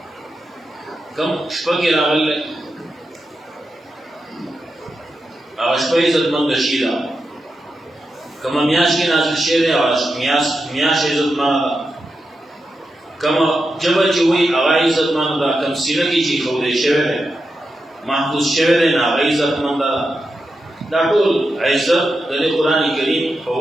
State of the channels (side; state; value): both; normal; correlation 0.88